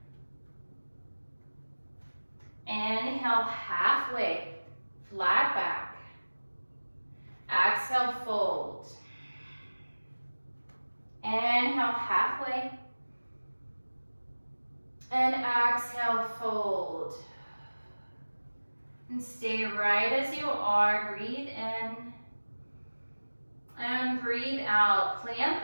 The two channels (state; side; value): inverted; both; correlation -1.00